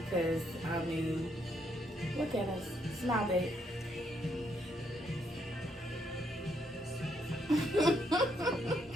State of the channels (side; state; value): both; normal; correlation 0.74